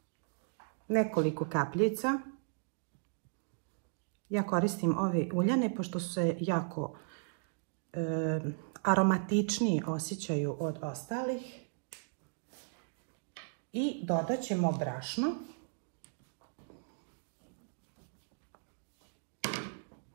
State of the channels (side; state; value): left; silent; digital silence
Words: nekoliko kapljica. Ja koristim ove uljane pošto se jako aromatičniji osjećaju od ostalih. I dodat ćemo brašno.